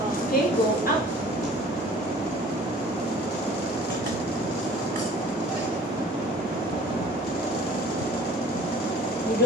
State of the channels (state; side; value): normal; both; correlation 0.50